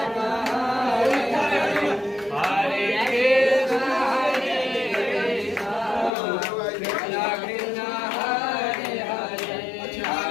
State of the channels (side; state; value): right; drops out; at 6.1 s